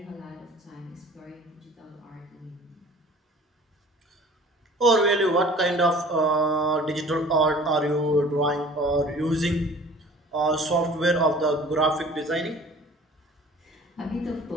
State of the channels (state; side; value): normal; both; correlation 0.47